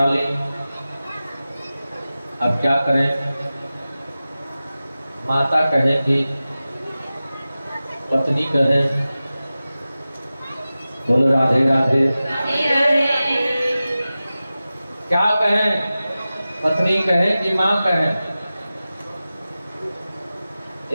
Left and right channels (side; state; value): both; inverted; correlation -0.95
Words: ली, अब क्या करें? माता कहे कि पत्नी कहे। बोलो राधे राधे। क्या कहें? पत्नी कहे कि माँ कहे?